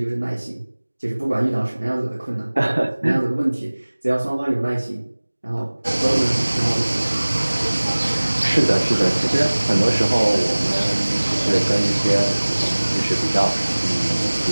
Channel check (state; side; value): inverted; both; correlation -1.00